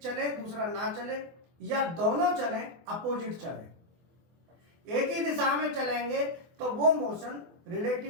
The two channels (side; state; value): left; late; 24 ms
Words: चले दूसरा ना चले, या दोनों चले अपोजिट चले। एक ही दिशा में चलेंगे तो वो मोशन